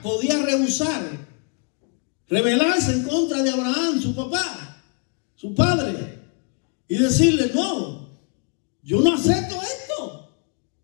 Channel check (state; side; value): quieter; right; 38.4 dB